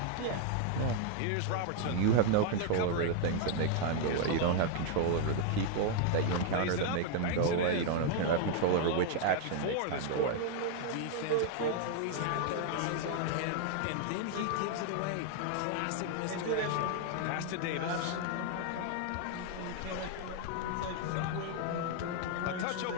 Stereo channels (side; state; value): both; different; correlation 0.00